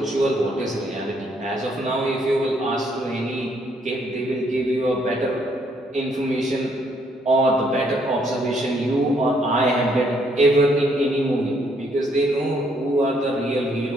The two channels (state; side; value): normal; both; correlation 0.69